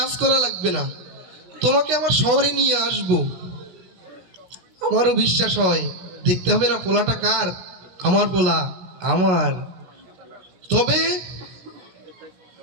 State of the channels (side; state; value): left; late; 17 ms